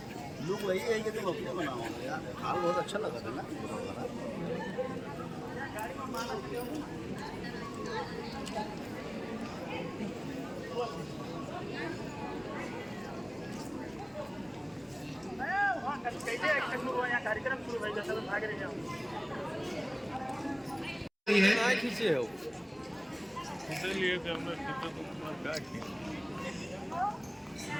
लोग वही है कि तुम अपने बनाओ यार। हाल बहुत अच्छा लगा था ना। कार्यक्रम शुरू हो गया, सब भाग रहे हैं। खींचे हो लिए थे हमने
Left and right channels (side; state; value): both; identical; correlation 1.00